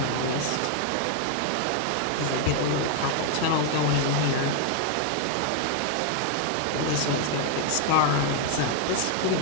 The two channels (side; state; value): both; different; correlation 0.00